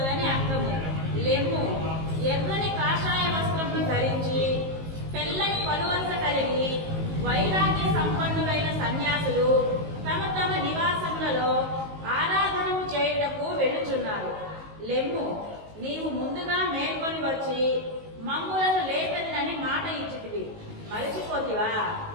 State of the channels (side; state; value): left; late; 19 ms